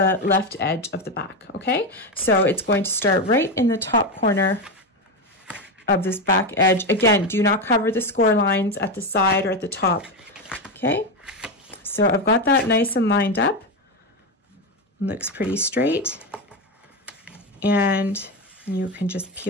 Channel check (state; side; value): normal; both; correlation 0.13